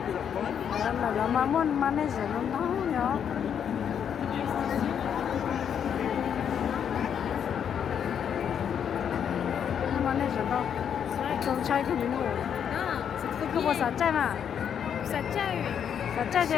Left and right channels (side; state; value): right; quieter; 8.3 dB